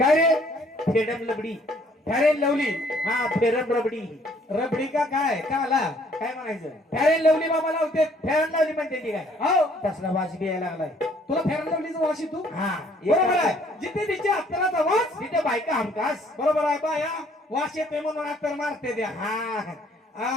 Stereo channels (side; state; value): both; normal; correlation 0.61